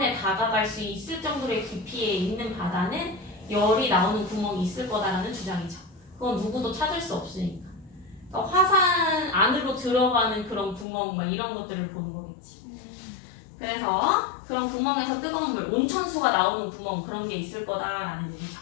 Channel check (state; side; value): drops out; right; at 10.9 s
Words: 다가갈 수 있을 정도의 깊이에 있는 바다는 열이 나오는 구멍이 있을 거다라는 주장이죠. 그건 누구도 찾을 수 없으니까. 그러니까 화산 안으로 들어가는 그런 구멍 막 이런 것들을 보는 거겠지. 그래서 그런 구멍에서 뜨거운 물, 온천수가 나오는 구멍 그런 게 있을 거다라는 얘기죠.